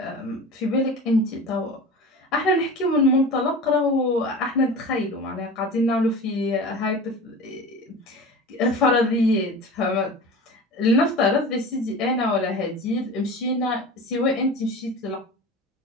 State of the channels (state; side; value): normal; both; correlation 0.34